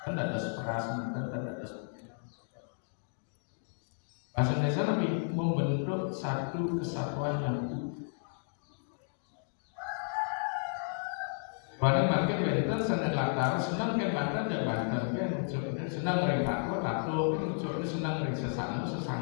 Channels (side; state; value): right; silent; digital silence